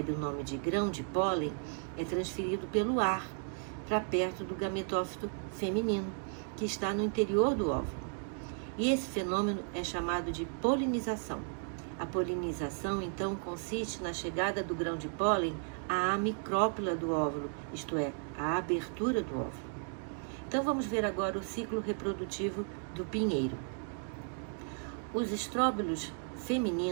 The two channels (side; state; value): left; silent; 55 dB below the other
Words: o nome de grão de pólen, é transferido pelo ar para perto do gametófito feminino, que está no interior do óvulo. E esse fenômeno é chamado de polinização. A polinização, então, consiste na chegada do grão de pólen à micrópila do óvulo, isto é, à abertura do óvulo. Então, vamos ver agora o ciclo reprodutivo do pinheiro. Os estróbilos